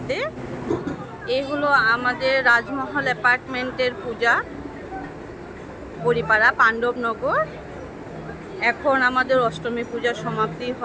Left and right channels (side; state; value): both; identical; correlation 1.00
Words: এই হলো আমাদের রাজমহল অ্যাপার্টমেন্টের পূজা, বড়িপাড়া পাণ্ডবনগর। এখন আমাদের অষ্টমী পূজা সমাপ্তি